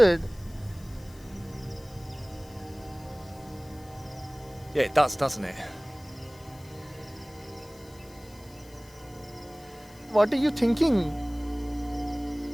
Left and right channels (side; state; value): left; noise; hiss, 24 dB below the sound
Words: Yeah, it does, doesn't it? What are you thinking?